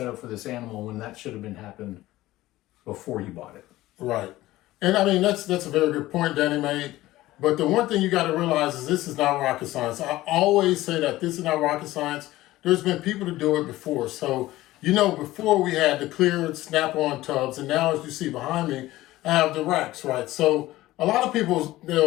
up for this animal when that should have been happened before you bought it. Right. And I mean, that's a very good point Danny made. But the one thing you got to realize is this is not rocket science. I always say that this is not rocket science. There's been people to do it before. So, before we had the clear snap-on tubs, and now as you see behind me, I have the racks, right? So a lot of people,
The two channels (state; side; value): quieter; right; 16.8 dB